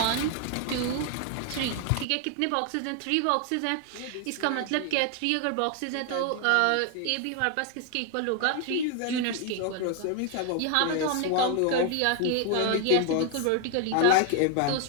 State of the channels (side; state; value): both; different; correlation 0.00